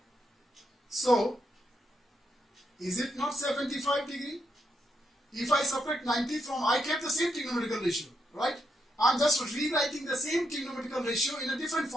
So is it not 75 degree? If I subtract 90 from, I kept the same trigonometrical ratio, right? I'm just rewriting the same trigonometrical ratio in a different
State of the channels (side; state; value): both; normal; correlation 0.81